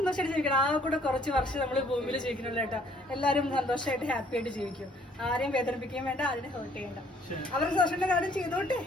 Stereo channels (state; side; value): normal; both; correlation 0.61